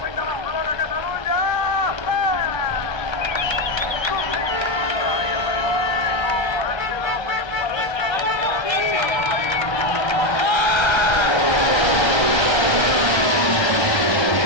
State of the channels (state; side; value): late; right; 1.3 ms